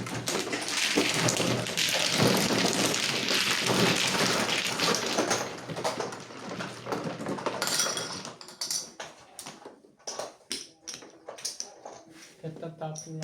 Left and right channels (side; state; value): both; identical; correlation 1.00